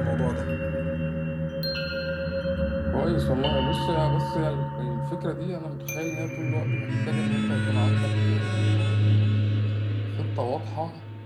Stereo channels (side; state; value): both; identical; correlation 1.00